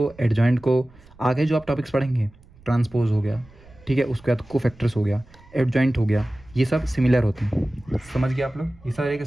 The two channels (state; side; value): noise; right; rumble, 25 dB below the sound